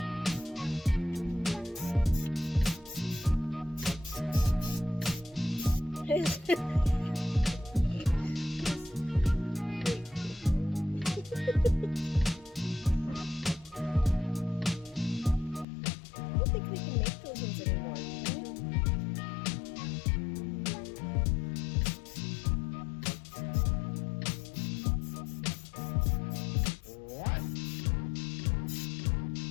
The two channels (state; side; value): drops out; right; at 15.7 s